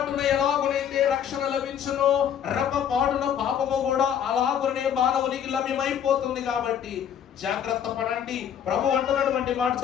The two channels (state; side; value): quieter; right; 9.0 dB